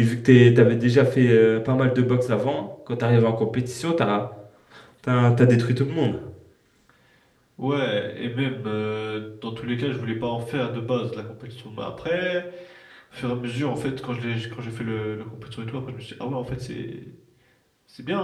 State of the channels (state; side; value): identical; both; correlation 1.00